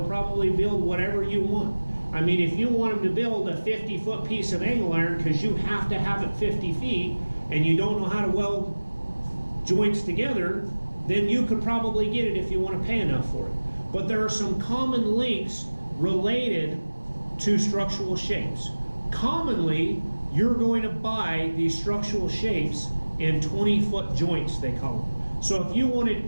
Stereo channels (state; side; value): inverted; both; correlation -1.00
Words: probably build whatever you want. I mean, if you want them to build a 50-foot piece of angle iron because you have to have it 50 feet and you don't know how to weld joints together, then you could probably get it if you want to pay enough for it. But there are some common links related to structural shapes. Commonly, you're going to buy these structural shapes in 20-foot joints, they call them. So if you wanted